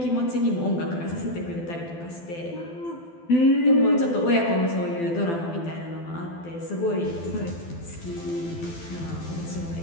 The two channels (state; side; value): late; right; 12 ms